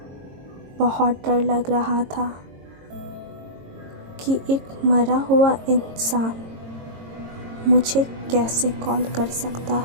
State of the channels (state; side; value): late; left; 22 ms